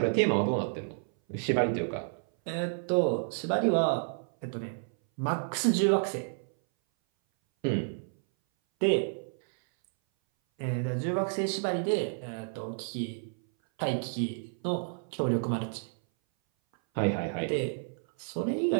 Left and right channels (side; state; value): left; silent; 58 dB below the other